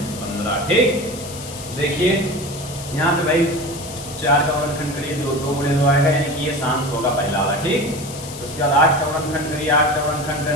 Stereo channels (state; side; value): noise; left; hiss, 13 dB below the sound